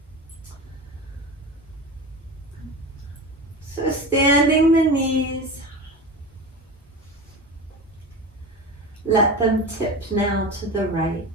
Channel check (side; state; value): both; normal; correlation 0.28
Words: So standing the knees, let them tip now to the right.